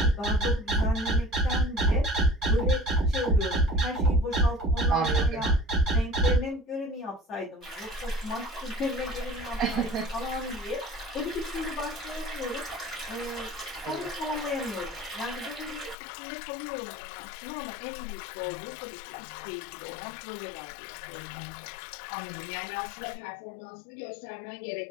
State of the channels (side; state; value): right; drops out; at 16.0 s